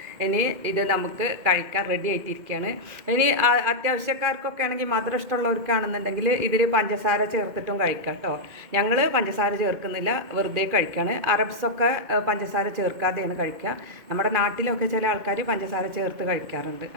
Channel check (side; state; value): left; late; 2.1 ms